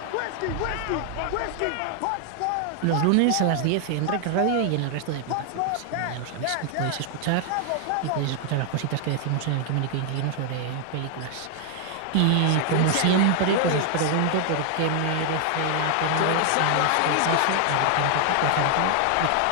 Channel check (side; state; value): both; different; correlation 0.00